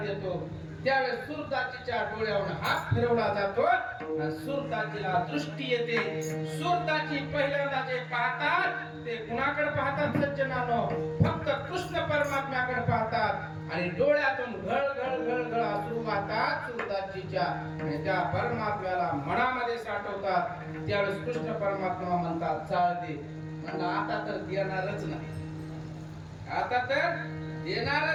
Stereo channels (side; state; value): both; identical; correlation 1.00